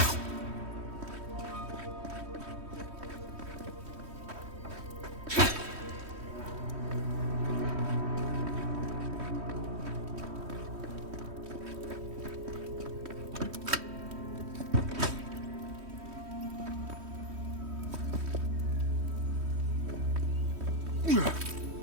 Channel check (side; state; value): left; late; 3.1 ms